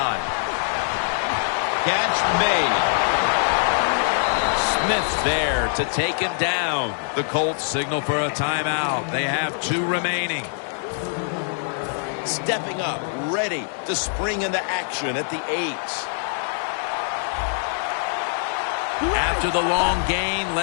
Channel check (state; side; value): silent; right; 63 dB below the other